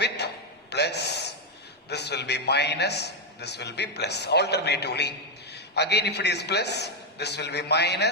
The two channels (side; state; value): both; normal; correlation 0.02